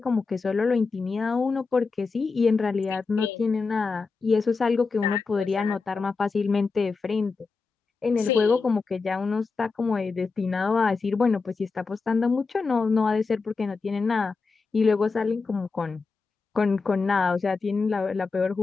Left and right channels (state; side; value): quieter; right; 4.5 dB